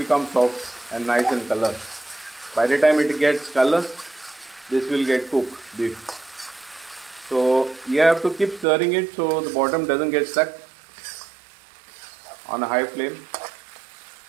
soft and nice in color. By the time it gets color, this will get cooked beef. So you have to keep stirring it so the bottom doesn't get stuck on a high flame.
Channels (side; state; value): left; drops out; at 8.7 s